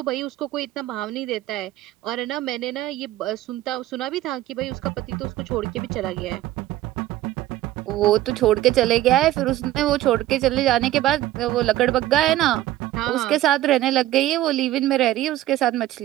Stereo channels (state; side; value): quieter; left; 14.6 dB